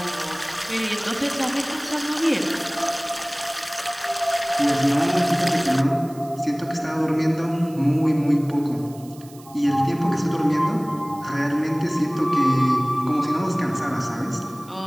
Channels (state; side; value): noise; right; hiss, 23 dB below the sound